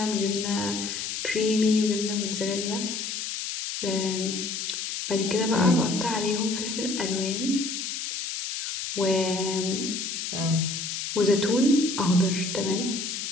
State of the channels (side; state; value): left; noise; hiss, 4 dB below the sound